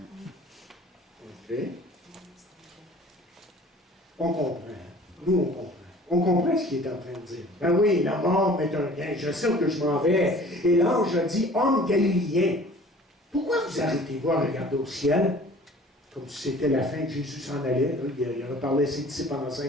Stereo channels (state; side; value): normal; both; correlation 0.48